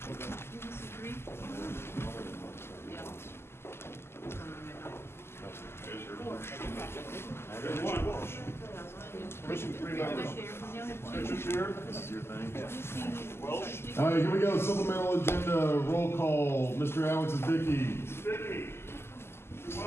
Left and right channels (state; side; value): late; right; 0.12 ms